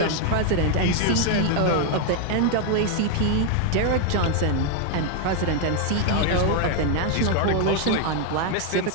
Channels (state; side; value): different; both; correlation 0.00